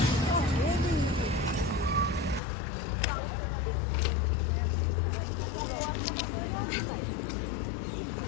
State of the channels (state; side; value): drops out; right; at 2.4 s